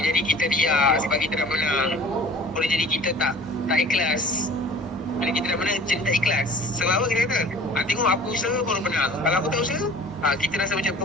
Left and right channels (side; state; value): both; normal; correlation 0.46